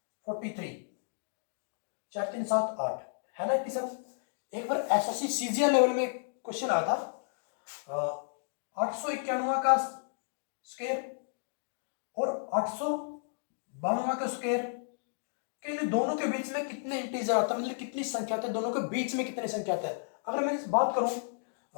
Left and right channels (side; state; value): right; silent; digital silence